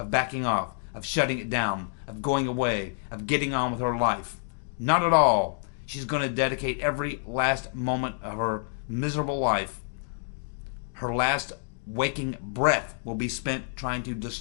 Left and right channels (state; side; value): silent; right; digital silence